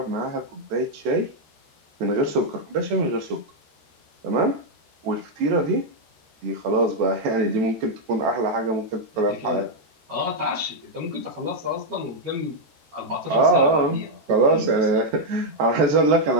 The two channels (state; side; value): late; left; 14 ms